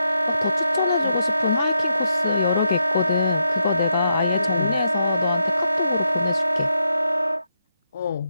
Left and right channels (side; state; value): both; inverted; correlation -0.82